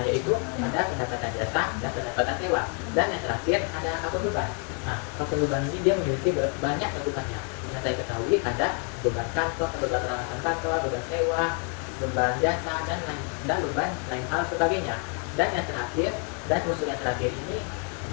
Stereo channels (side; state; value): right; quieter; 39.8 dB